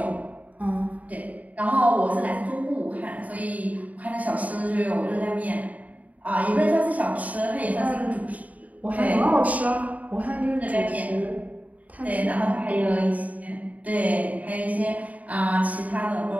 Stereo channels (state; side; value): late; left; 0.072 ms